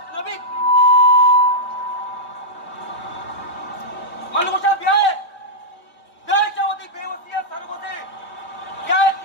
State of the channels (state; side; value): late; right; 3.2 ms